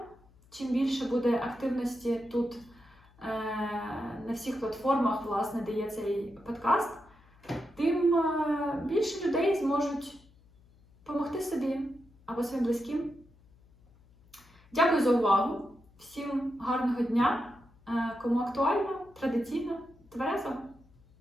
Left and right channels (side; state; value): left; noise; hum, 28 dB below the sound